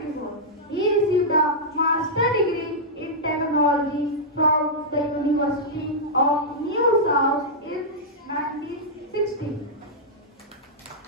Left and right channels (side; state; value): both; normal; correlation -0.09